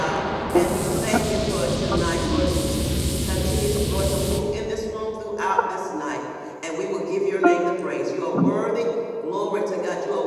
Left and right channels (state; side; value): identical; both; correlation 1.00